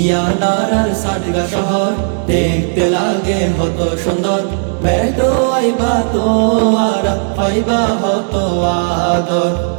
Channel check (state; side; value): silent; left; digital silence